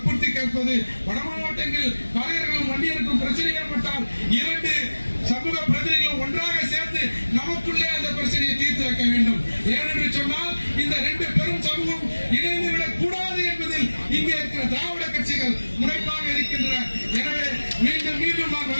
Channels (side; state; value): both; inverted; correlation -1.00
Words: கேட்பது, வட மாவட்டங்கள் பறையர்களும் வன்னியருக்கும் பிரச்சனை ஏற்பட்டால் 2 சமூக பிரதிநிதிகளும் ஒன்றாக சேர்ந்து நமக்குள்ளே அந்த பிரச்சனையை தீர்த்து வைக்க வேண்டும். ஏனென்று சொன்னால் இந்த 2 பெரும் சமூகம் இணைந்து விடக் கூடாது என்பதில் இங்கே இருக்கிற திராவிட கட்சிகள் முனைப்பாக இருக்கின்றன. எனவே மீண்டும் நான்